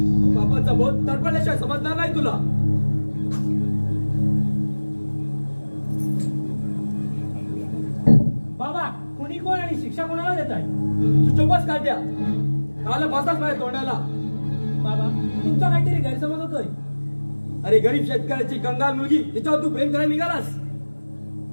बापाचा बोध तडपडल्याशिवाय समजणार नाही तुला. बाबा, कोणी कोण आणि शिक्षा कोणाला देत आहे? तू चोपच काढ्या. काल बसाच माझ्या तोंडाला. बाबा, तुमचा काहीतरी गैरसमज होतोय. अरे गरीब शेतकऱ्याची कंगाल मुलगी तिच्यावर तू प्रेम करायला निघालास.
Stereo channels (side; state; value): both; inverted; correlation -1.00